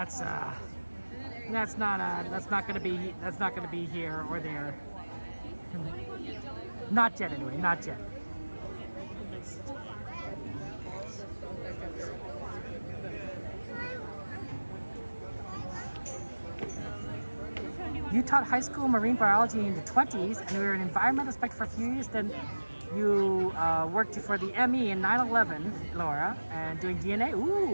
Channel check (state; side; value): inverted; both; correlation -1.00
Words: not gonna be here or there. Not yet, anyway. Not yet. You taught high school marine biology in the 20s, and you were an environmental inspector for a few years. Then you worked for the ME in 9/11, Laura, and doing DNA.